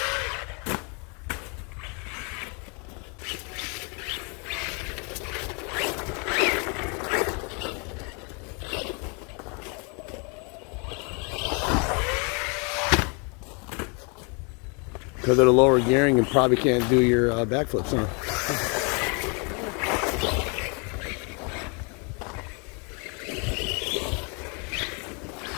Because of the lower gearing, you probably can't do your backflips, huh?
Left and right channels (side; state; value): right; quieter; 34.2 dB